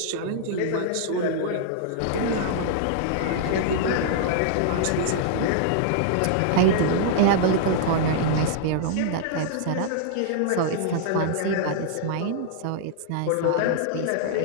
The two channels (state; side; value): different; both; correlation -0.01